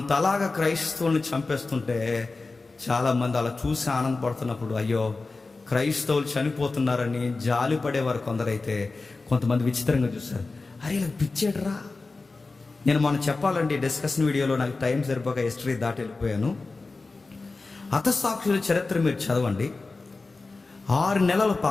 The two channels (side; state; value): right; quieter; 3.7 dB